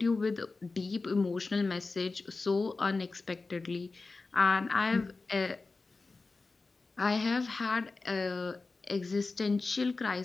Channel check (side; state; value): right; quieter; 3.8 dB